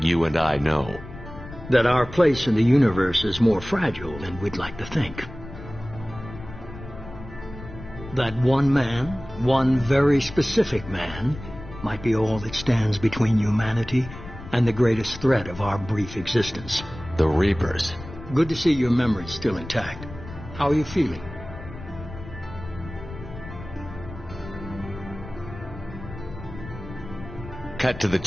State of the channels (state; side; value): noise; left; rumble, 14 dB below the sound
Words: you and I know? That our place in the universe is more fragile than we'd like to think. That one man, one very specific man, might be all that stands between humanity and the greatest threat of our brief existence. The Reapers. Good to see your memory's still intact. How are you feeling? Cut to the